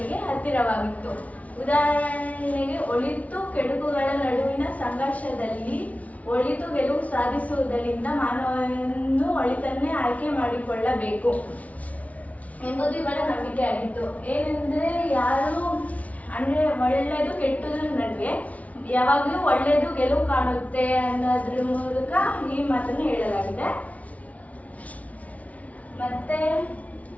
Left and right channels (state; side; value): late; right; 0.069 ms